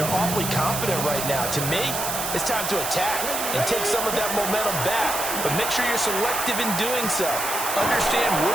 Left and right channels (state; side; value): noise; right; hiss, 3 dB below the sound